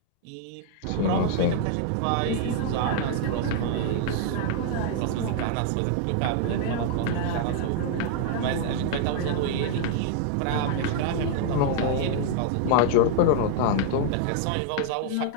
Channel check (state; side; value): different; both; correlation -0.01